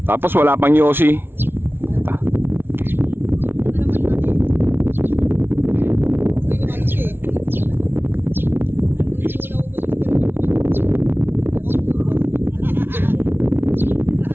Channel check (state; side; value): late; left; 0.11 ms